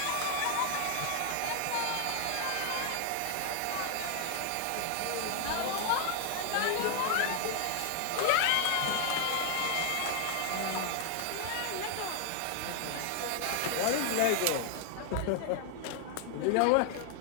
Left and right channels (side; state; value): both; different; correlation 0.00